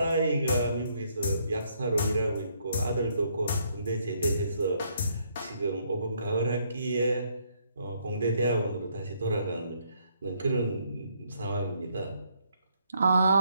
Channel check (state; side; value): inverted; both; correlation -0.71